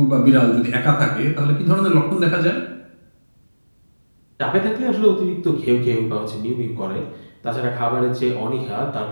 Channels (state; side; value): inverted; both; correlation -1.00